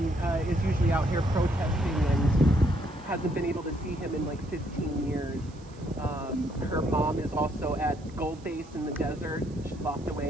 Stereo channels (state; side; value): noise; right; hiss, 27 dB below the sound